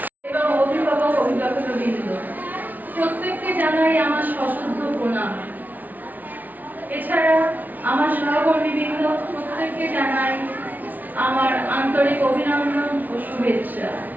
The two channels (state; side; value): late; left; 0.080 ms